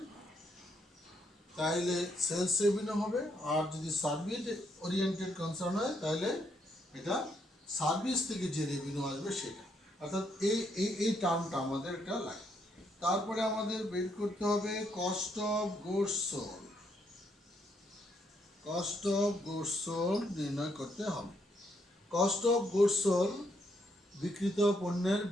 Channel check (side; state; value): both; normal; correlation 0.74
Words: তাহলে সেলস রেভিনিউ হবে, আর যদি সার্ভিস ওরিয়েন্টেড কনসার্ন হয় তাহলে এটা সার্ভিস থেকে যে রেভিনিউ আসবে সেটা, অর্থাৎ এই টার্মটা আমাদের এটা লাগে। তারপরে আমাদের বের করতে হবে cost of goods sold, cost of goods sold নির্ণয় করতে হবে। কস্ট অফ গুডস সোল্ড বিক্রিত পণ্যের